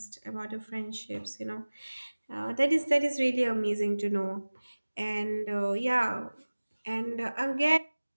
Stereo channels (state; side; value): inverted; both; correlation -1.00